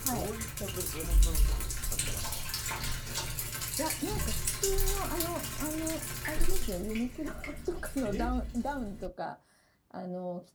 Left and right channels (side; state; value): both; identical; correlation 1.00